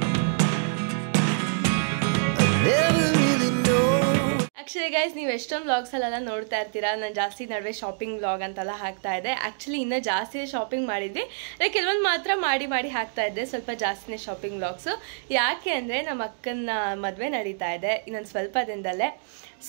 Actually guys, ನೀವು ಎಷ್ಟೊಂದು vlogs ಅಲ್ಲೆಲ್ಲ ನೋಡ್ತಾ ಇರ್ತೀರಾ. ನಾನು ಜಾಸ್ತಿ ನಡುವೆ ಶಾಪಿಂಗ್ ವ್ಲಾಗ್ ಅಂತೆಲ್ಲ ಹಾಕ್ತಾ ಇದ್ದೆ. ಆ್ಯಕ್ಚುಲಿ ಇನ್ನೂ ಜಾಸ್ತಿ ಶಾಪಿಂಗ್ ಮಾಡಿದ್ವಿ, ಕೆಲವೊಂದು ಮಾತ್ರ ಮಾಡಿ ಹಾಕ್ತಾ ಇದ್ದೆ. ಸ್ವಲ್ಪ ಜಾಸ್ತಿನೇ ಶಾಪಿಂಗ್ ವ್ಲಾಗ್ಸು. ಯಾಕೆ ಅಂದರೆ ನಮ್ಮ ಅಕ್ಕನ ಮದುವೆ ನಡೀತಾ ಇದೆ ಇನ್ನೊಂದು ಸ್ವಲ್ಪ ದಿನದಲ್ಲೇ.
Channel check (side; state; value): left; silent; digital silence